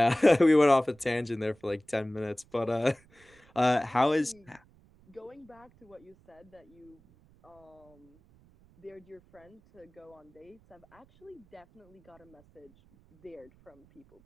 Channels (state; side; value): noise; right; rumble, 29 dB below the sound